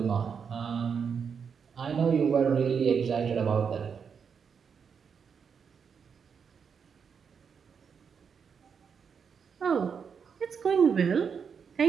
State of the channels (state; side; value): quieter; left; 6.5 dB